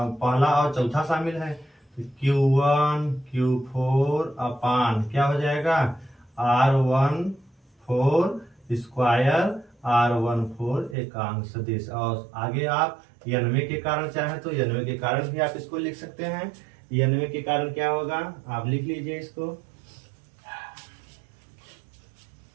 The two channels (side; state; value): left; drops out; at 11.0 s